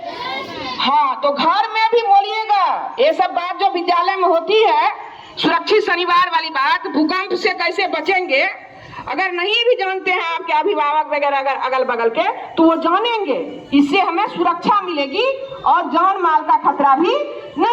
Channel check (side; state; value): both; identical; correlation 1.00